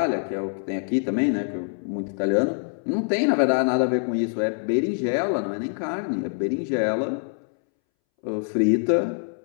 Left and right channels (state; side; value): silent; right; 62 dB below the other